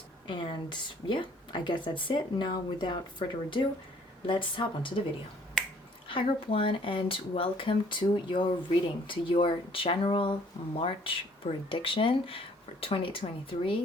And yeah, I guess that's it. Now, without further ado, let's hop onto the video. Hi group 1, and welcome to your reading, to your general March prediction for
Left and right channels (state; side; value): normal; both; correlation 0.59